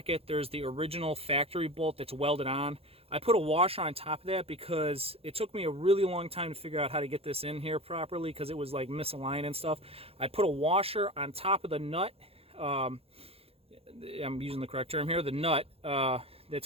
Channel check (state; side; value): late; left; 0.28 ms